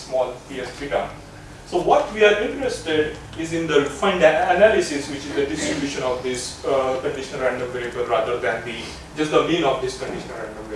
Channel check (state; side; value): identical; both; correlation 1.00